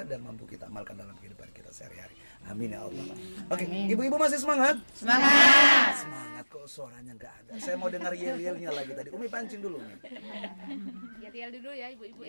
dan mampu kita amalkan dalam kehidupan kita sehari-hari. Amin ya Allah. Oke, ibu-ibu masih semangat? Semangat. Semangat kok, suaranya nggak ada. Saya mau dengar yel-yelnya lagi tadi. Umi pancing dulu nih. Yel dulu ya ibu-ibu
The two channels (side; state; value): both; inverted; correlation -1.00